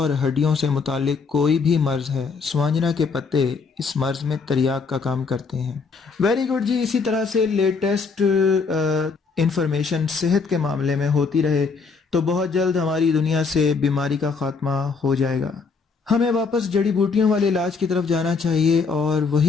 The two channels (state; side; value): quieter; right; 4.9 dB